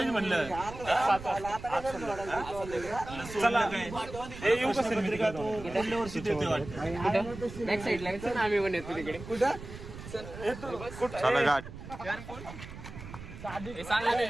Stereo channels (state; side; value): noise; right; rumble, 13 dB below the sound